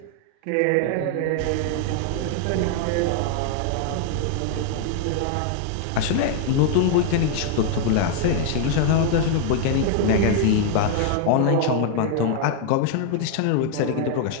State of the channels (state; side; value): different; both; correlation 0.00